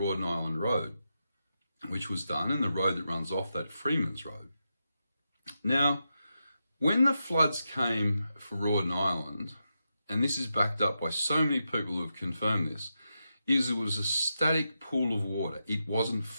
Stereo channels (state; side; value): inverted; both; correlation -0.87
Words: Island Road, which was done, and the road that runs off that, Freeman's Road. Now, when the floods came for Rawdon Island, and this is backed up by so many people who have confirmed this, is it was a static pool of water. It wasn't